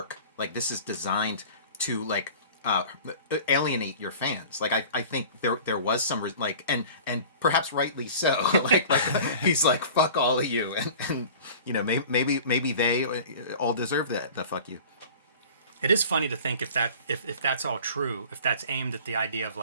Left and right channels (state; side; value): inverted; both; correlation -0.42